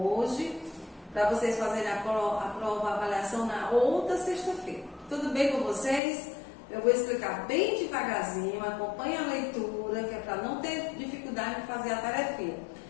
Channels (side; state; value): right; drops out; at 6.0 s